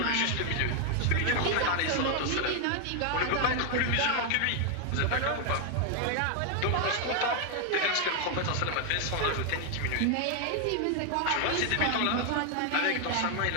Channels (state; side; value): different; both; correlation 0.00